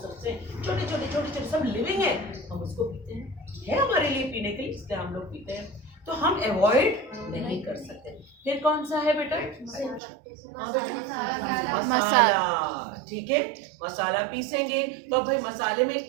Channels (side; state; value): left; drops out; at 10.0 s